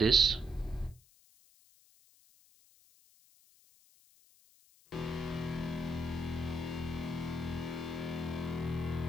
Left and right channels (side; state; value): left; noise; hiss, 28 dB below the sound